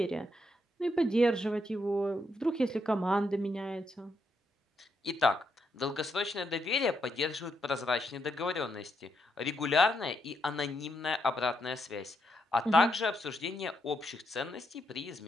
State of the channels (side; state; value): both; normal; correlation 0.79